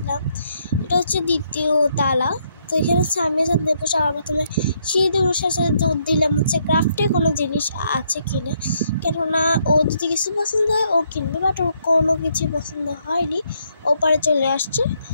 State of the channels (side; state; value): both; inverted; correlation -0.73